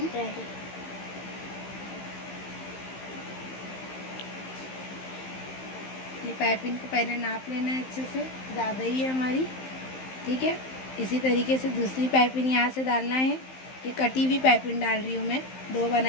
ये पाइपिंग को पहले नाप लेना है अच्छे से, ज़्यादा ही है हमारी, ठीक है। इसी तरीके से दूसरी पाइपिंग यहाँ से डालना है। ये कटी हुई पाइपिंग डाल रही हूँ मैं, 2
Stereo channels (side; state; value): right; late; 15 ms